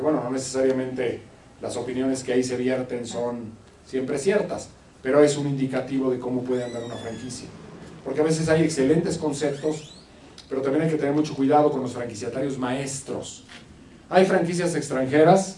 bueno, no necesariamente las opiniones que ahí se vierten son siempre ciertas, pero es un indicativo de cómo puede andar una franquicia. Porque a veces hay excelentes conceptos, pero también hay que tener mucho cuidado con los franquiciatarios maestros. Hay franquicias extranjeras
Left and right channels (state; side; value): identical; both; correlation 1.00